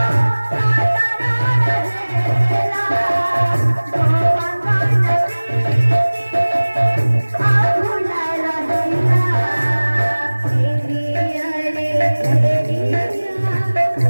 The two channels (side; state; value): both; inverted; correlation -1.00